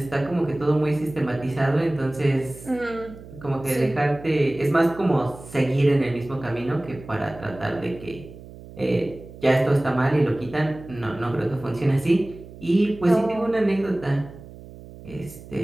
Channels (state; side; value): noise; right; hum, 17 dB below the sound